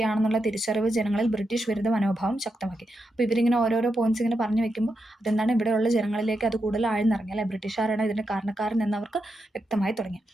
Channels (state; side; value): normal; both; correlation 0.85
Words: തിരിച്ചറിവ് ജനങ്ങളിൽ ബ്രിട്ടീഷ് വിരുദ്ധ മനോഭാവം ശക്തമാക്കി. അപ്പോൾ ഇവരിങ്ങനെ ഓരോരോ പോയിന്റ്സ് ഇങ്ങനെ പറഞ്ഞു വെക്കുമ്പോൾ അതെന്താണ് ഇവിടെയുള്ള ജനങ്ങളിലേക്ക് അത് കൂടുതൽ ആഴ്ന്നിറങ്ങി അല്ലെ, ബ്രിട്ടീഷുകാരാണ് ഇതിൻ്റെ കാരണക്കാരൻ എന്നവർക്ക് വ്യക്തമായി തുടങ്ങി.